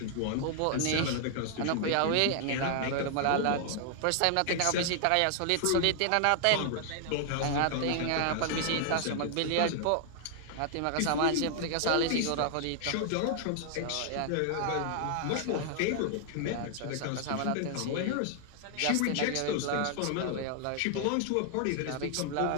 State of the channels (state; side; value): different; both; correlation 0.00